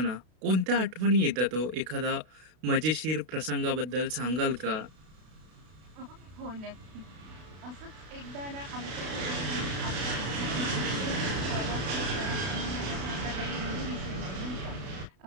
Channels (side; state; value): left; late; 32 ms